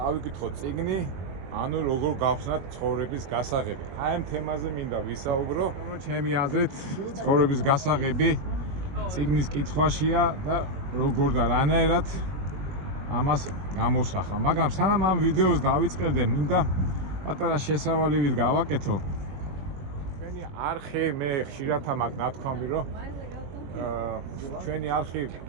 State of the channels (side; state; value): left; late; 21 ms